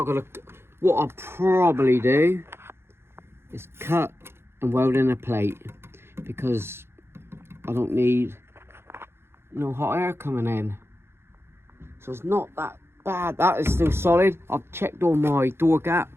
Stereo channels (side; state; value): left; late; 0.12 ms